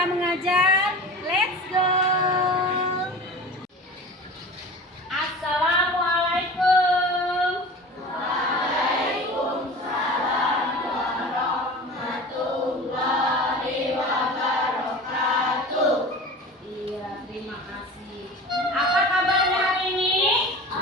mengajar? Let's go! Assalamualaikum. Waalaikumsalam warahmatullahi wabarakatuh. Iya, terima kasih. Apa kabarnya hari ini?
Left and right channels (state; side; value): normal; both; correlation 0.36